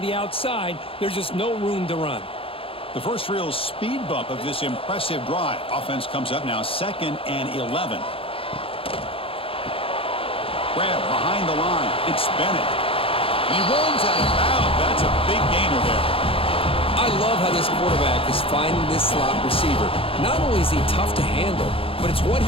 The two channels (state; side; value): late; right; 0.27 ms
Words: the outside. There's just no room to run. The first real speed bump of this impressive drive. Offense comes up now 2nd and 11. Grab behind the line. It's Bennett. He runs out of bounds. That's a big gainer there. I love how this quarterback is finding this slot receiver. Not only is he tough to handle, but it's what